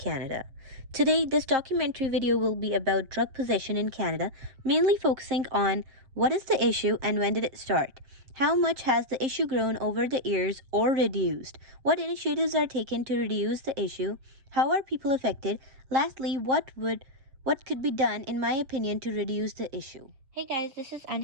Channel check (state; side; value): late; left; 7.5 ms